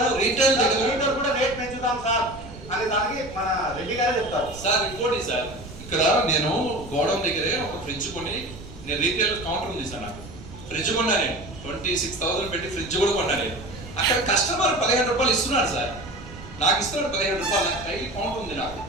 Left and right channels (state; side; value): noise; right; rumble, 15 dB below the sound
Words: రీటైల్ లీటర్ కూడా రేట్ పెంచుతాం సార్ అనే దానికి మన రెడ్డి గారే చెప్తారు సార్. ఇంకోటి సార్, ఇక్కడ నేను గోడౌన్ దగ్గరే ఒక ఫ్రిడ్జ్ కొని, నేను రీటైల్ కౌంటర్ ఉంది సార్, నాకు ఫ్రిడ్జ్ కొన్నా, నేను 26,000 పెట్టి ఫ్రిడ్జ్ కూడా కొన్నా. నేను అక్కడ కస్టమర్ 15 రూపాయలు ఇస్తున్నాడు సార్, నాకు ఇస్తున్నాడు 15 రూపాయలు. డైలీ కౌంట్ ఉంది నాకు